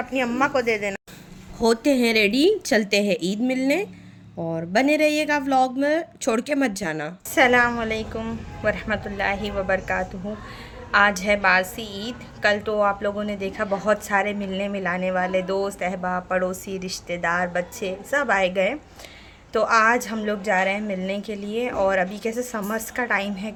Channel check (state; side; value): identical; both; correlation 1.00